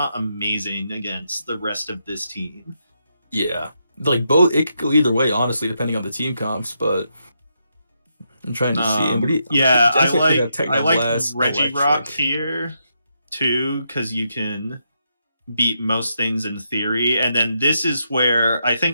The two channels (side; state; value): both; inverted; correlation -0.81